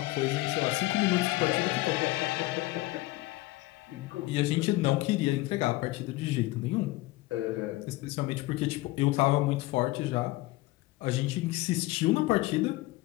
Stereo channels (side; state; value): right; quieter; 19.2 dB